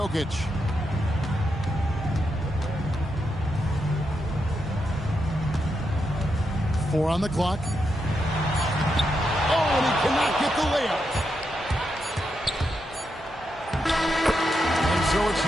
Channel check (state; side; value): normal; both; correlation 0.84